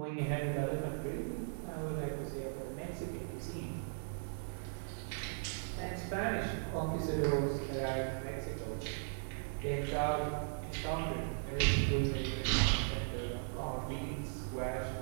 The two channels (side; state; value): left; silent; digital silence